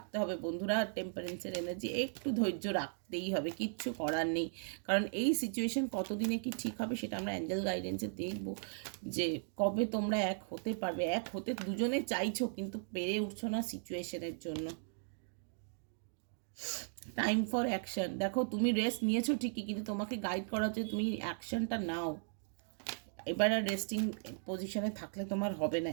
হবে বন্ধুরা, টেম্পারেন্সের এনার্জি একটু ধৈর্য রাখতেই হবে, কিচ্ছু করার নেই, কারণ এই সিচুয়েশন কতদিনে কি ঠিক হবে সেটা আমরা অ্যাঞ্জেল গাইডেন্সে দেখবো, যে কবে তোমরা এক হতে পারবে, এক হতে দুজনে চাইছো কিন্তু পেরে উঠছো না সিচুয়েশনের জন্য। টাইম ফর অ্যাকশন, দেখো তুমি রেস্ট নিয়েছো ঠিকই, কিন্তু তোমাকে গাইড করা হচ্ছে তুমি অ্যাকশনটা নাও, এবার আর রেস্টিং পজিশনে থাকলে তোমার হবে না,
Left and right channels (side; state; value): left; silent; digital silence